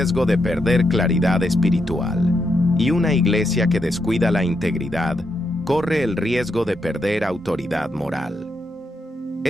de perder claridad espiritual, y una iglesia que descuida la integridad corre el riesgo de perder autoridad moral.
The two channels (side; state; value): both; normal; correlation 0.81